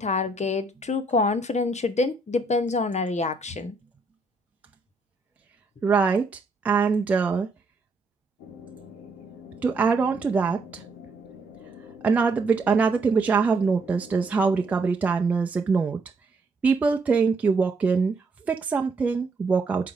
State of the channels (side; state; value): left; quieter; 3.3 dB